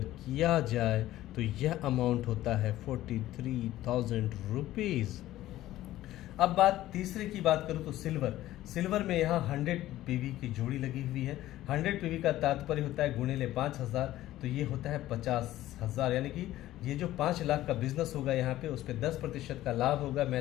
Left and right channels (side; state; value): right; quieter; 14.8 dB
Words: जाए तो यह अमाउंट होता है 43,000 रुपीज़। अब बात तीसरे की बात करूं तो सिल्वर में यहाँ 100 पीवी की जोड़ी लगी हुई है। 100 पीवी का तात्पर्य होता है गुणिले 5,000, तो ये होता है 50,000। यानी कि ये जो 5 लाख का बिजनेस होगा यहाँ पे, उस पर 10% का लाभ होगा